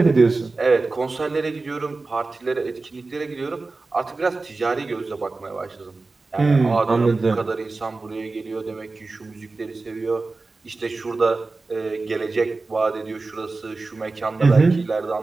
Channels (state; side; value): quieter; left; 3.6 dB